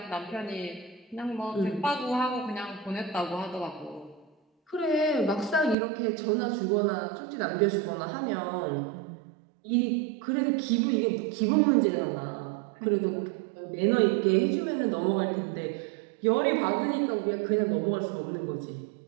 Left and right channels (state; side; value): drops out; left; at 5.8 s